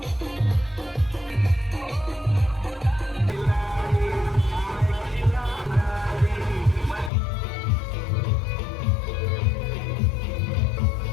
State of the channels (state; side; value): drops out; right; at 7.1 s